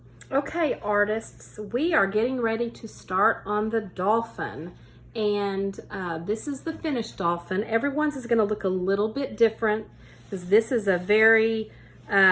Okay, artists, we are getting ready to start on the dolphin. And this is the finished dolphin. Everyone's is going to look a little bit different because this is a very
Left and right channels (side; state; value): both; identical; correlation 1.00